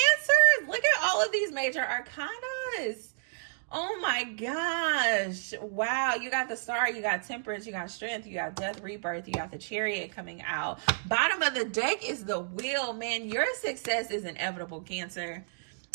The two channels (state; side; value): silent; left; digital silence